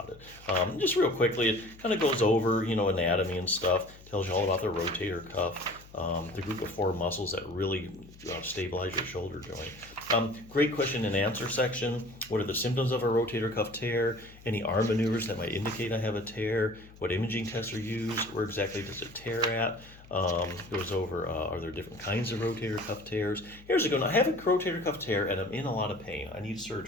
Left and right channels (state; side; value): noise; left; hum, 21 dB below the sound